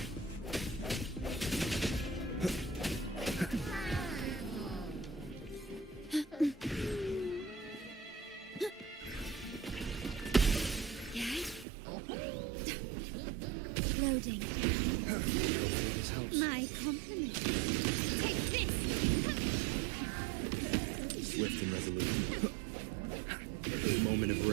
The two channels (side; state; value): left; drops out; at 11.7 s